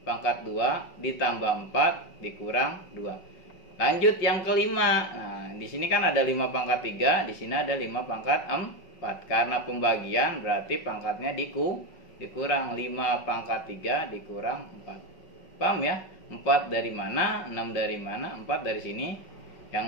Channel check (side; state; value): right; late; 5.3 ms